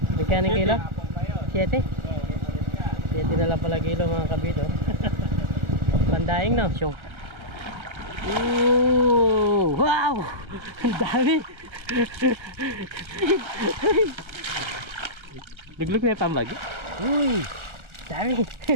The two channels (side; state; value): left; late; 1.3 ms